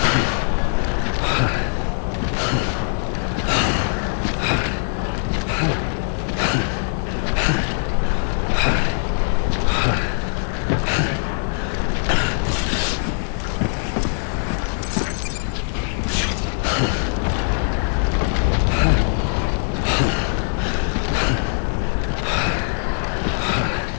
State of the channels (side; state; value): right; silent; digital silence